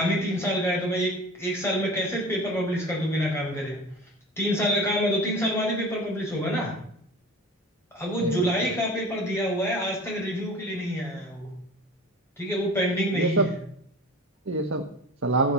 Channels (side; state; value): both; normal; correlation 0.39